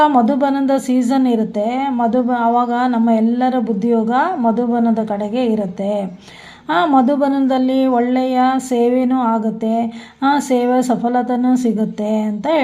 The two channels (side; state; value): both; identical; correlation 1.00